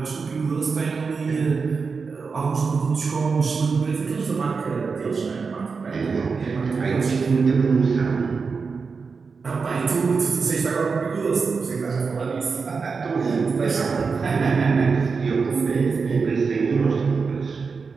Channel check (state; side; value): quieter; left; 5.0 dB